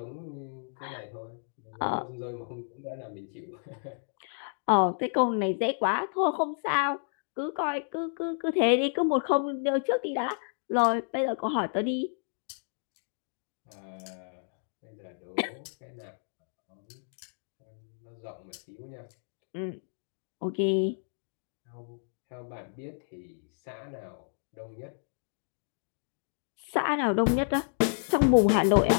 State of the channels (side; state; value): right; silent; digital silence